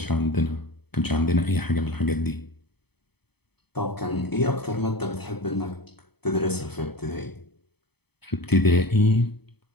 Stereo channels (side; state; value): right; late; 0.97 ms